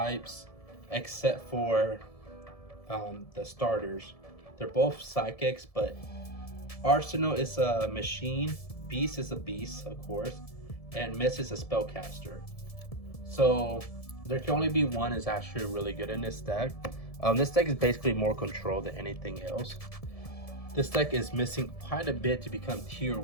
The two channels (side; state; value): right; late; 1.7 ms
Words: except for the starters. They're both psychics, but Arsenal is a machine, Beast is a beast, of course, and Miss is a spellcaster. So there can only be one is actually really good in this deck. This deck is basically more control than anything else. This deck is missing quite a bit to become tier